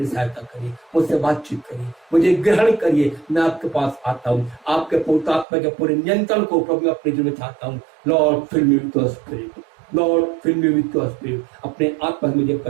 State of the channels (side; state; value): left; drops out; at 5.5 s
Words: सहायता करिए, मुझसे बातचीत करिए, मुझे ग्रहण करिए। मैं आपके पास आता हूँ, आपके पवित्र आत्मा के पूरे नियंत्रण को प्रभु अपने जीवन में चाहता हूँ। Lord fill me with your spirit, Lord fill me with your spirit. अपने आत्मा से मुझे